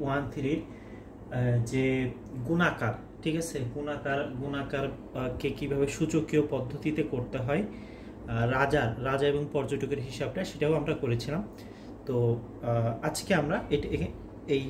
যে গুণাকার, ঠিক আছে, গুণাকারকে কিভাবে সূচকীয় পদ্ধতিতে করতে হয়, রাজা এবং পর্যটকের হিসাবটা সেটাও আমরা করেছিলাম। তো আজকে আমরা এই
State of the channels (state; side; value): identical; both; correlation 1.00